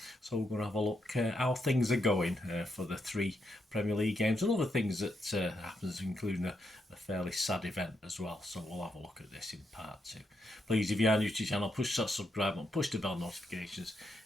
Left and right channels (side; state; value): both; normal; correlation 0.81